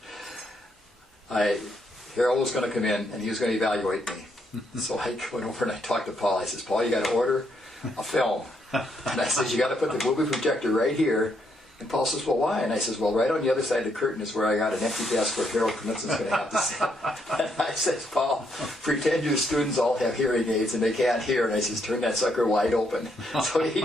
Harold was going to come in and he was going to evaluate me. So I went over and I talked to Paul. I says, Paul, you got to order a film. And I says, you got to put the movie projector right here. And Paul says, well, why? And I says, well, right on the other side of the curtain is where I got an empty desk where Harold Knudsen's going to have to sit. And I says, Paul, pretend your students all have hearing aids and they can't hear. And I says, turn that sucker wide open. So he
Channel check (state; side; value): normal; both; correlation 0.75